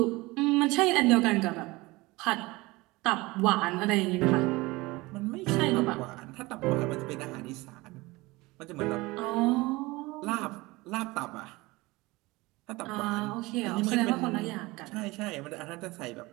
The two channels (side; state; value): left; quieter; 21.9 dB